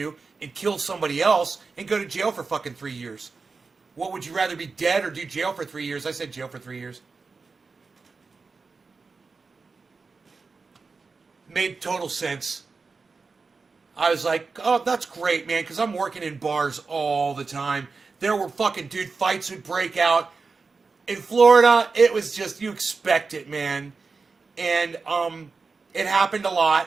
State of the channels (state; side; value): quieter; left; 4.4 dB